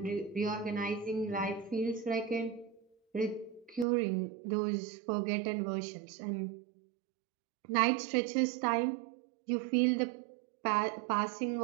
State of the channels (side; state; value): left; drops out; at 3.9 s